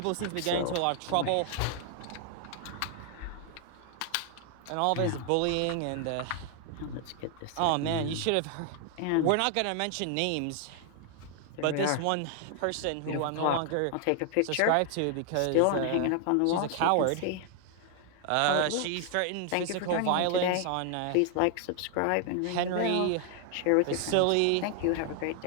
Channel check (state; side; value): different; both; correlation 0.00